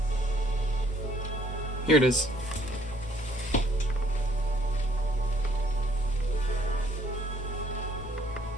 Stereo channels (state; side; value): normal; both; correlation 0.64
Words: Here it is.